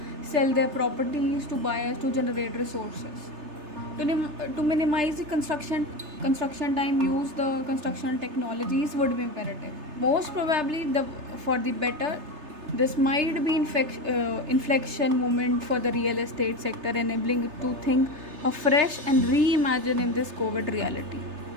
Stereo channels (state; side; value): late; left; 3.3 ms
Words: sell their properties to buyers to generate resources. To minimize the construction time, use the construction technologies would be imperative. Most probably, for the better, this might be inflection moment for the real estate sector, enabling it to think afresh and reimagine in this COVID reality.